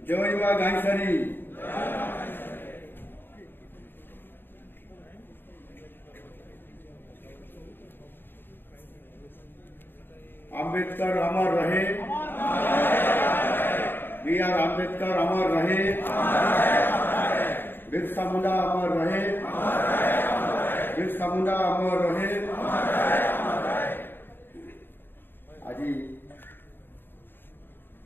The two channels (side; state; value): right; late; 0.097 ms